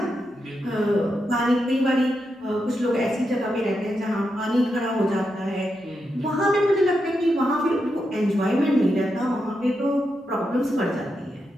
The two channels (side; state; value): both; normal; correlation 0.85